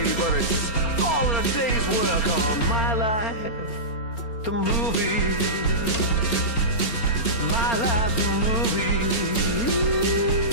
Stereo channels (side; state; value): right; late; 4.4 ms